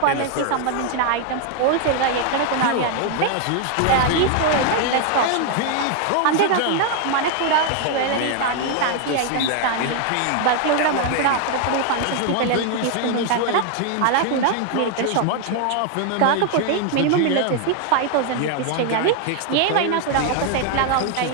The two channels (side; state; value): both; different; correlation 0.00